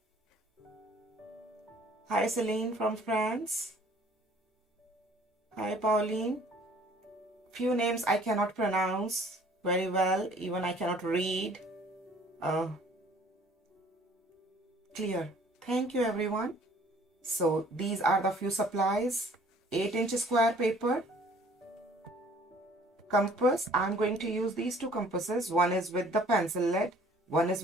Hi, Celine from France. Hi, Pauline. Few names I cannot pronounce very well. Even I cannot read. Clear. Thank you, everyone. So these are the few supplies. 8-inch square paper. Compass. I'm going to use these two compasses. One is with the pencil lead. One is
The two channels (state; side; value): normal; both; correlation 0.55